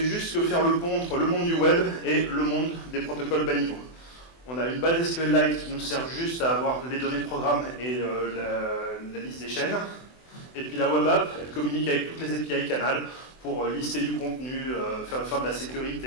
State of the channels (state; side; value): late; right; 24 ms